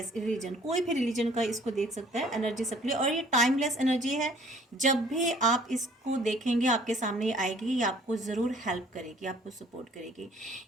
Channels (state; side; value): normal; both; correlation 0.56